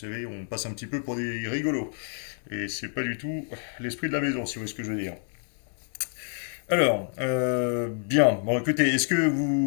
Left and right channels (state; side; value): silent; right; 59 dB below the other